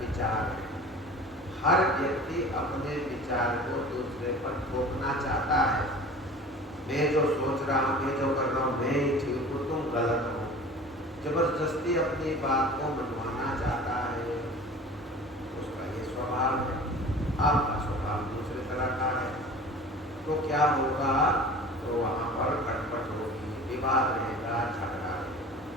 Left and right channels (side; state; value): both; normal; correlation 0.41